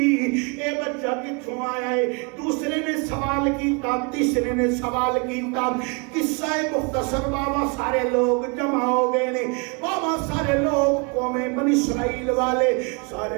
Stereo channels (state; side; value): quieter; left; 32.6 dB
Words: بچہ کتھوں آیا ہے؟ دوسرے نے سوال کیتا، تیسرے نے سوال کیتا، قصہ مختصر بابا سارے لوگ جمع ہو گئے نے، بابا سارے لوگ قوم بنی اسرائیل والے سارے